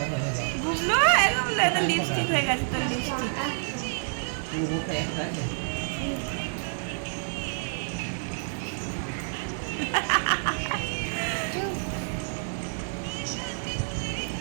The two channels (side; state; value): left; silent; digital silence